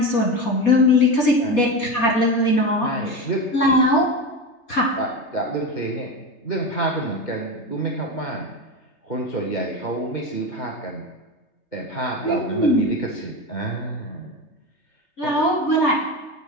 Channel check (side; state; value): right; late; 3.3 ms